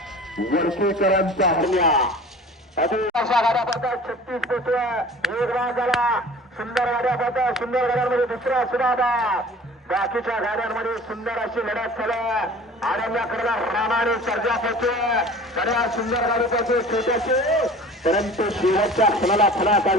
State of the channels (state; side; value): normal; both; correlation 0.43